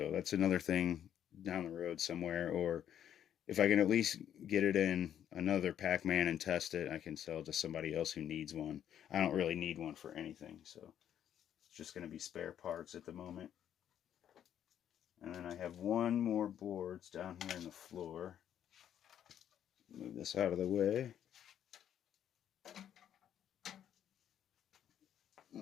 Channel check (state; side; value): quieter; right; 10.0 dB